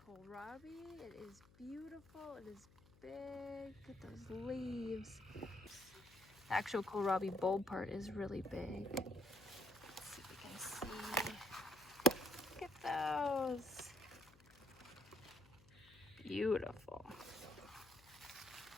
kohlrabi. It is beautiful. It is big. Look at those leaves. The actual kohlrabi bulb part is really big. Let's see if we can see. Look at those. Beautiful.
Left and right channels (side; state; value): left; noise; hum, 24 dB below the sound